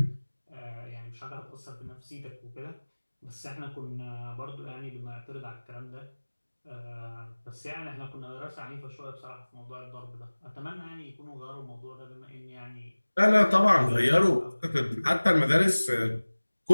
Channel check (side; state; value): both; inverted; correlation -1.00